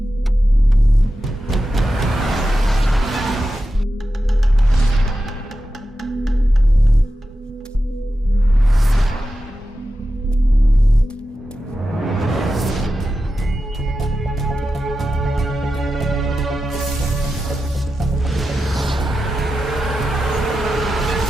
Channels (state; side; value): normal; both; correlation 0.91